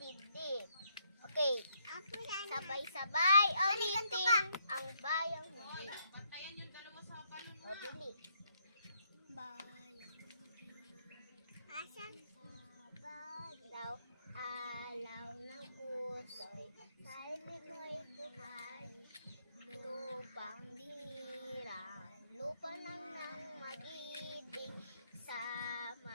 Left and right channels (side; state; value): both; inverted; correlation -0.73